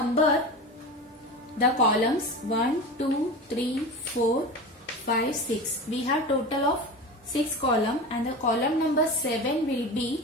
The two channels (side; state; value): both; normal; correlation 0.29